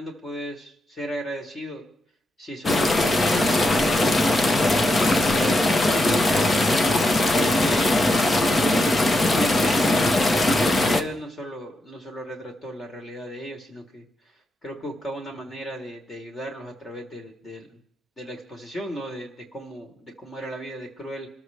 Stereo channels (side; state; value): both; normal; correlation 0.84